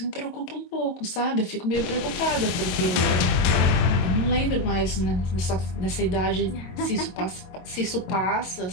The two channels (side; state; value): right; late; 22 ms